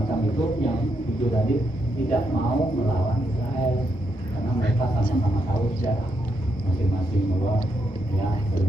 itu yang 7 tadi tidak mau melawan Israel karena mereka sama-sama tahu sejarah masing-masing bahwa ya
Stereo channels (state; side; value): normal; both; correlation 0.80